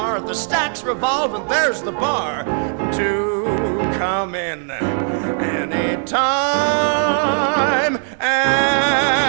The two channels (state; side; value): silent; left; 57 dB below the other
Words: the stacks revolve and there's the bar. Do come in anytime